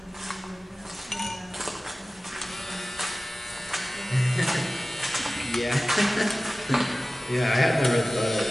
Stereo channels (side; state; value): both; normal; correlation 0.97